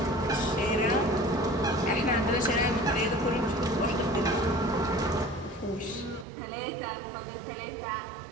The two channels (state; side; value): drops out; left; at 6.2 s